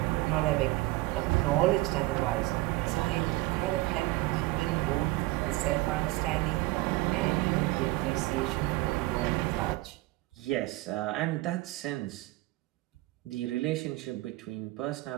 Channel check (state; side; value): quieter; left; 19.8 dB